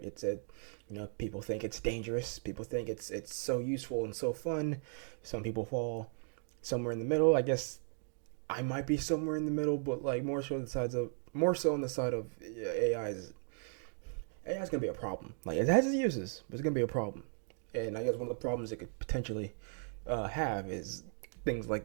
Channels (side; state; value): left; silent; 53 dB below the other